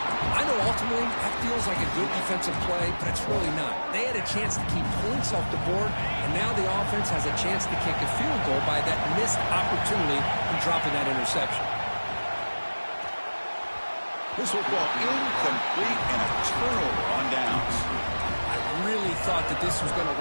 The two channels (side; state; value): both; inverted; correlation -1.00